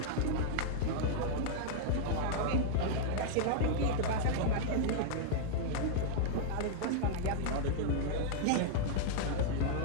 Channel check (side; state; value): both; different; correlation -0.02